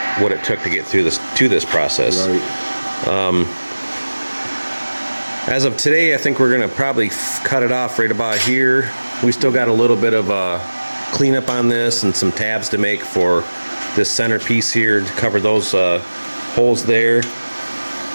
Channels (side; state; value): both; inverted; correlation -1.00